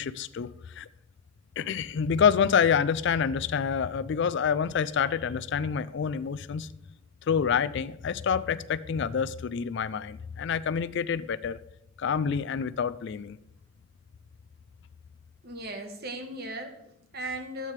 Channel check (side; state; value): right; quieter; 6.4 dB